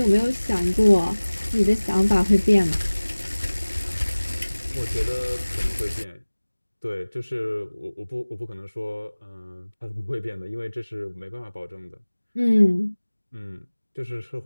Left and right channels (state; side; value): inverted; both; correlation -1.00